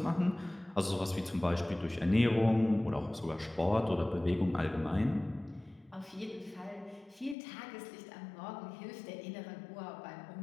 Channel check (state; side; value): drops out; right; at 7.4 s